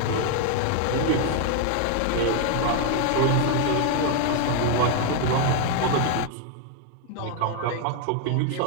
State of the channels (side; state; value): both; different; correlation 0.00